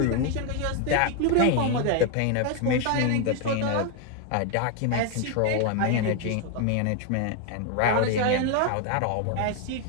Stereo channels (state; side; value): different; both; correlation 0.01